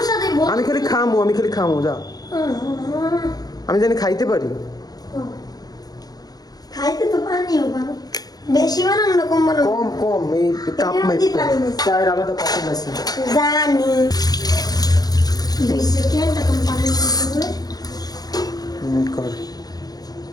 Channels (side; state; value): right; late; 0.19 ms